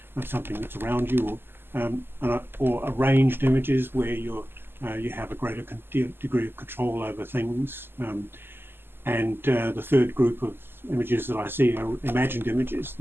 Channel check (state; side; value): late; left; 0.10 ms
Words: something that's around you, or arranged images where you have a greater degree of control over things. And the third group of images that I see are imagined images.